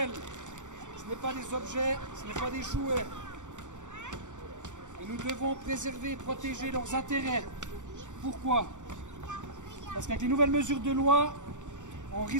Ce n'est pas des objets, ce n'est pas des jouets. Et nous devons préserver et protéger leurs intérêts. Pourquoi? Parce qu'avec les nouvelles mesures de loi, on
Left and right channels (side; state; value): left; late; 0.85 ms